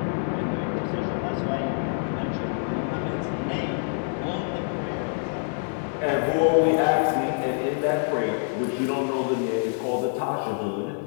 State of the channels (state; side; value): silent; right; digital silence